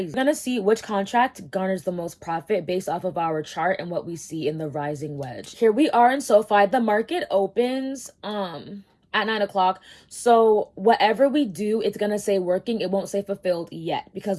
We're gonna see which contract garners the most profit based off of our chart and what we see in the rising wedge. Here we are in SoFi. The market opens at 9 o'clock. So whatever we do, it's gonna say working. It won't say fulfilled yet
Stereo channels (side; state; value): both; identical; correlation 1.00